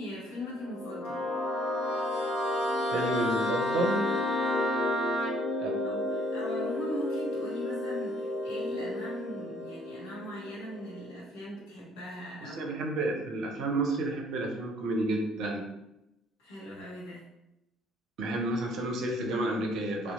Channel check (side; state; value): both; normal; correlation 0.62